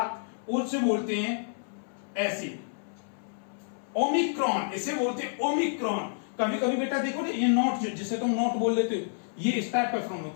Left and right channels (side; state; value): right; silent; 58 dB below the other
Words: उससे बोलते हैं ऐसे ओमिक्रॉन। इसे बोलते हैं ओमिक्रॉन। कभी कभी बेटा देखो ना, ये नोट जिसे तुम नोट बोल देते हो, ये इस टाइप का फॉर्म